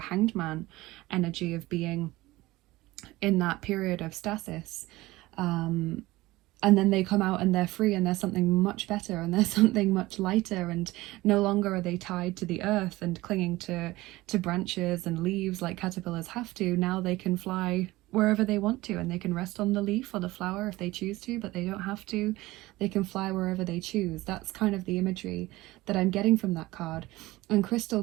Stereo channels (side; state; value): left; quieter; 18.9 dB